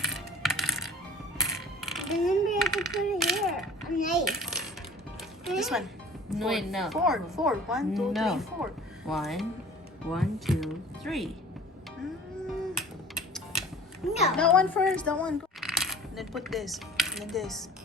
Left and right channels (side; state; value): both; normal; correlation 0.45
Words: Remember, you have to put it here. A knife. This one. No, wait, no. 4. 1, 2, No. 3, 4. 1, 2, 3. No. That one first. That one. And then put this. And then this.